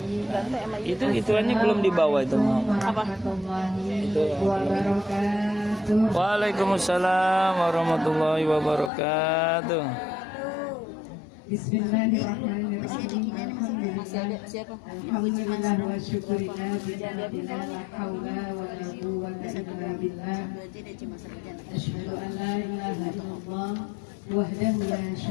Ganteng sama Itu ituannya belum dibawa itu mau. apa? Waalaikumsalam warahmatullahi wabarakatuh. Bismillahirrahmanirrahim. Masih ada siapa? Alhamdulillah wa syukurillah bila la haula wa la quwwata illa billah. Berarti dia cuma sarjana. Asyhadu an la ilaha illallah wahdahu la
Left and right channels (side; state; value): right; drops out; at 8.9 s